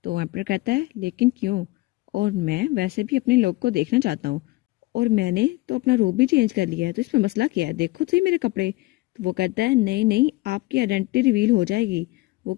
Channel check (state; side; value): quieter; right; 20.6 dB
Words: तो एम्पर कहता है लेकिन क्यों, और मैं वैसे भी अपने लोग को देखना चाहता हूँ, और मैंने तो अपना रूप भी चेंज कर लिया है, तो इसमें मसला क्या है, देखो तो सही मेरे कपड़े। तो वो कहता है नहीं नहीं, आपकी आइडेंटिटी रिवील हो जाएगी। वो